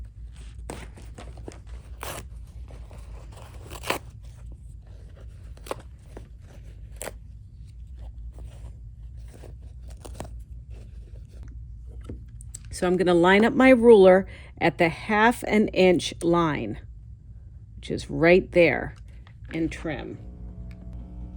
So I'm going to line up my ruler at the 1/2 inch line, which is right there, and trim.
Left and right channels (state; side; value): identical; both; correlation 1.00